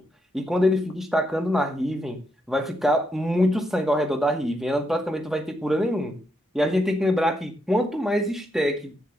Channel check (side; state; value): both; normal; correlation 0.80